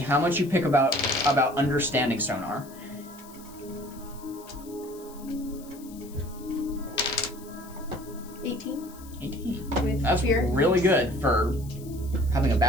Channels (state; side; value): noise; left; hiss, 21 dB below the sound